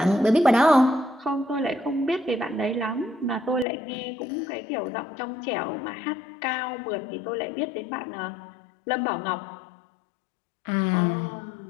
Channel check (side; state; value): right; drops out; at 3.7 s